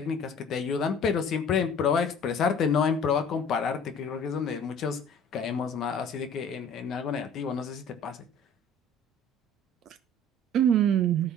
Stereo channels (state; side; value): normal; both; correlation 0.47